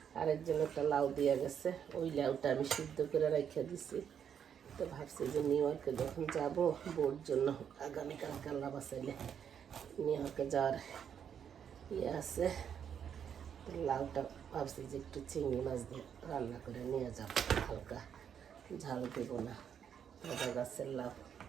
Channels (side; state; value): left; quieter; 8.2 dB